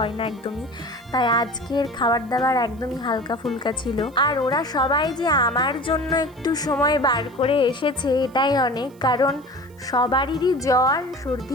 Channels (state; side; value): noise; right; hiss, 30 dB below the sound